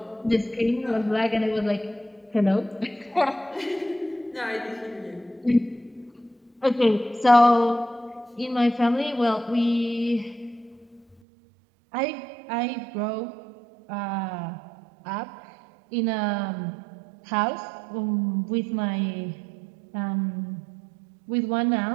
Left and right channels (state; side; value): drops out; left; at 11.2 s